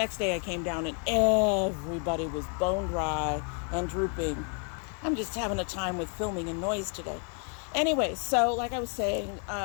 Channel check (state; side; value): quieter; right; 39.4 dB